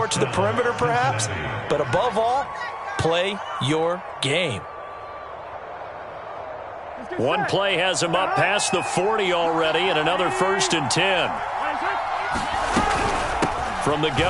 to the perimeter perhaps, but above all, play your game. One play has him up past the 40 already, and another 1st and 10. From the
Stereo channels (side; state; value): both; identical; correlation 1.00